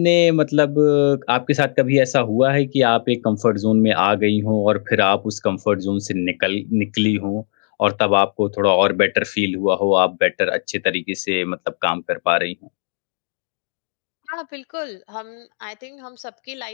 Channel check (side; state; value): right; silent; digital silence